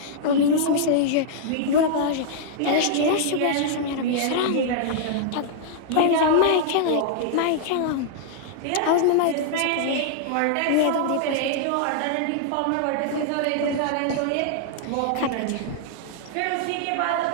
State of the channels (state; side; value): different; both; correlation -0.01